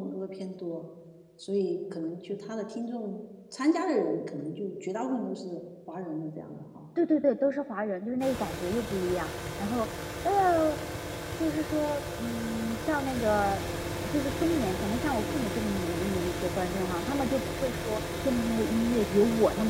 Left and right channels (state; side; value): identical; both; correlation 1.00